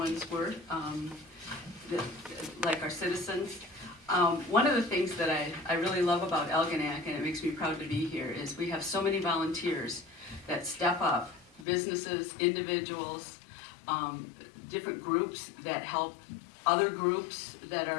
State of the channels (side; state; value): right; drops out; at 11.7 s